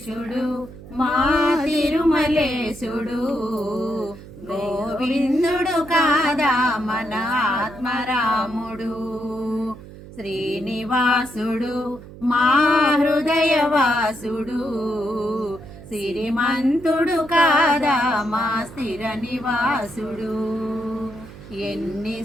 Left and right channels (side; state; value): right; noise; hum, 16 dB below the sound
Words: మా తిరుమలేశుడు, గోవిందుడు కాదా మన ఆత్మరాముడు. శ్రీనివాసుడు మా హృదయవాసుడు, సిరిమంతుడు కాదా మా స్థిర నివాసుడు.